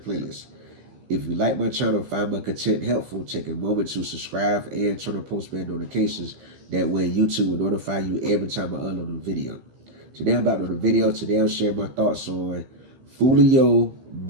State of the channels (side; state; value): left; late; 15 ms